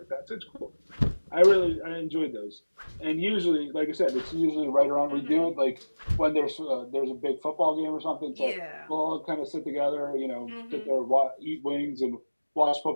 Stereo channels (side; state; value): both; inverted; correlation -1.00